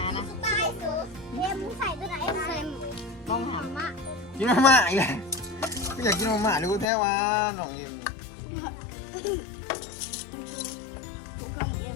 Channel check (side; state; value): right; drops out; at 6.9 s